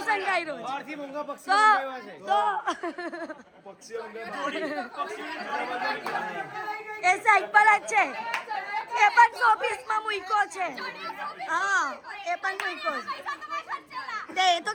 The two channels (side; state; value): both; identical; correlation 1.00